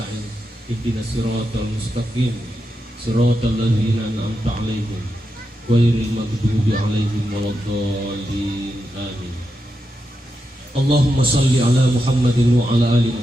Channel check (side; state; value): both; normal; correlation 0.87